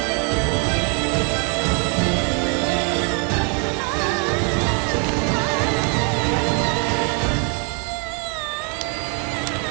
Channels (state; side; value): quieter; left; 36.9 dB